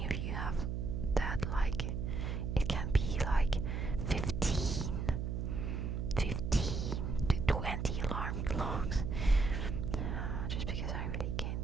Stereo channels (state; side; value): noise; right; hum, 2 dB below the sound